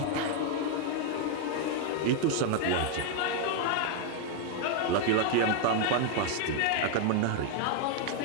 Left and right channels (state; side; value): different; both; correlation 0.01